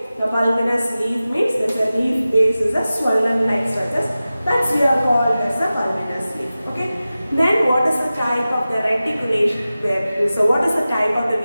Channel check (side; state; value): both; inverted; correlation -0.95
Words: The pulvinous leaf means that the leaf base is a swollen like structures. That's we are called as a pulvinous leaf. Okay. Then what is the type of the reticulation? So what is the type of the